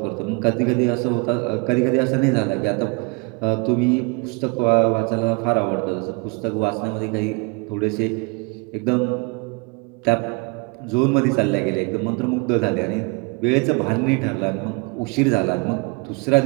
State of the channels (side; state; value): left; quieter; 29.9 dB